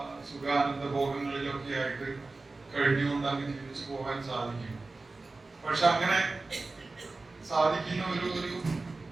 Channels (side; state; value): left; quieter; 3.5 dB